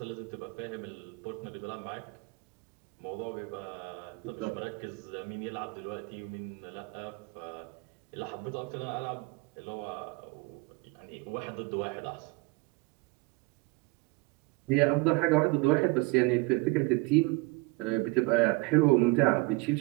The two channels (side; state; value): left; quieter; 25.1 dB